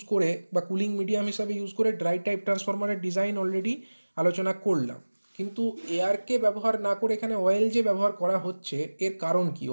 করে বা কুলিং মিডিয়াম হিসাবে ইউজ করে ড্রাই টাইপ ট্রান্সফরমারের ডিজাইন অলরেডি আলোচনা করলাম, কিন্তু এয়ারকে ব্যবহার না করে এখানে অয়েল যে ব্যবহার করা হচ্ছে, এর কারণ কি?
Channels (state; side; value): inverted; both; correlation -1.00